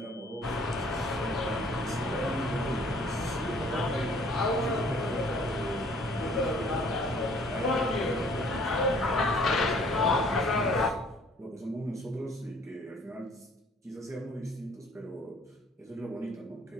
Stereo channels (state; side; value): normal; both; correlation 0.57